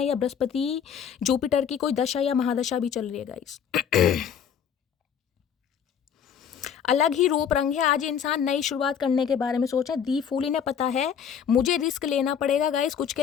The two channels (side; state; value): right; quieter; 7.9 dB